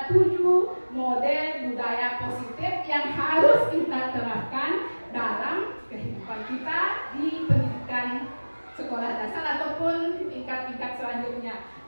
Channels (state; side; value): inverted; both; correlation -1.00